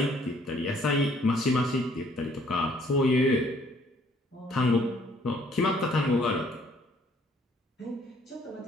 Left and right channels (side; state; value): both; normal; correlation 0.62